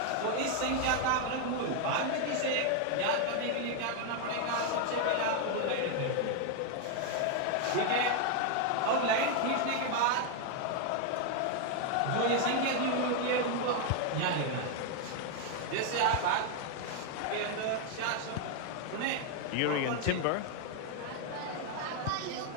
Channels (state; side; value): different; both; correlation 0.01